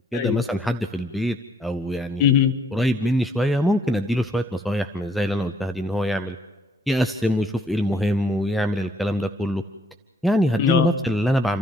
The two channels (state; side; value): normal; both; correlation 0.66